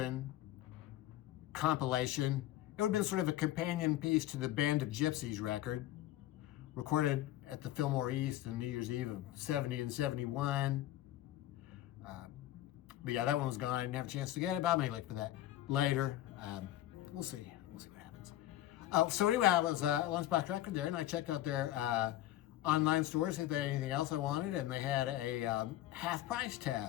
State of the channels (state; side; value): quieter; right; 14.0 dB